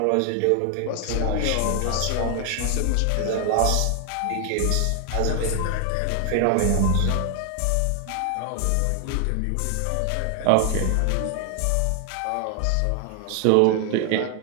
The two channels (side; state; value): both; different; correlation 0.00